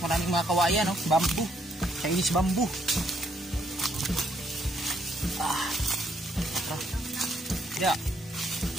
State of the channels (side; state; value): both; normal; correlation 0.72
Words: Maraming mga kawayan, no? Bambu. Chinese bambu. Ya.